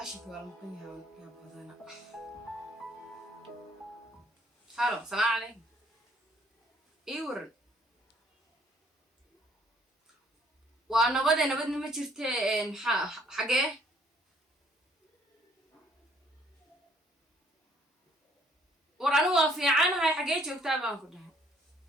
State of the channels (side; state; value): both; normal; correlation 0.63